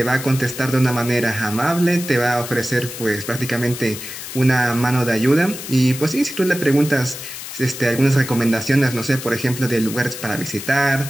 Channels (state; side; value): noise; left; hiss, 10 dB below the sound